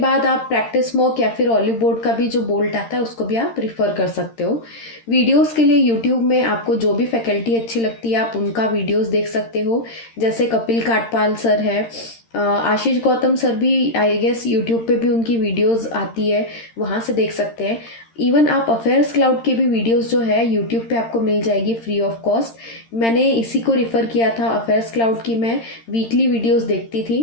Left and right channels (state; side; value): late; right; 13 ms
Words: आप प्रैक्टिस मॉक या फिर ऑलिव बोर्ड का भी जो बोल्ट आता है उसको भी आप रिफ़र कर सकते हो। वीडियोस के लिए यूट्यूब में आपको जो भी फैकल्टी अच्छी लगती है आप उनका वीडियोस देख सकते हो। जैसे कपिल काटपाल सर है, आशीष गौतम सर भी आई गेस यूट्यूब पे भी उनकी वीडियोस आती है, वहाँ से देख सकते हैं। इवन आप अफेयर्स क्लाउड के भी वीडियोस जो है यूट्यूब पे आपको मिल जाएगी फ्री ऑफ कॉस्ट। मैंने इसी को रिफ़र किया था, अफेयर्स क्लाउड की मैं वीकली वीडियोस देखती